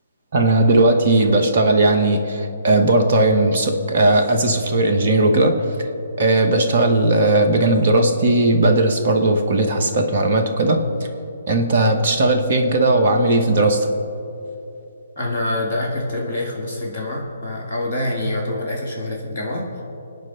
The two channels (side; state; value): both; inverted; correlation -0.58